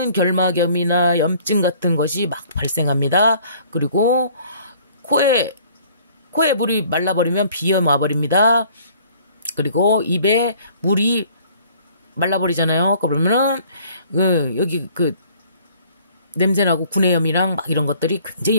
결막염이나 염증 같은 것이 막 발생합니다. 그리고 코에 물이 말라버리면 비염 와버립니다. 그리고 입에 물이 말라버리잖아요. 그러면은 여기 냄새나고 구내염이랑 막 이런 것들이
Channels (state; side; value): inverted; both; correlation -0.55